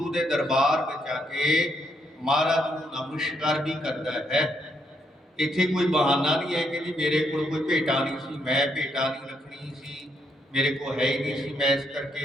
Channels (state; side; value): normal; both; correlation 0.75